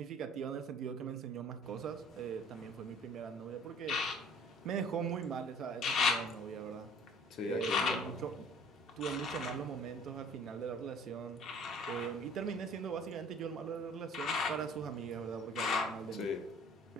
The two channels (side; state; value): both; normal; correlation 0.51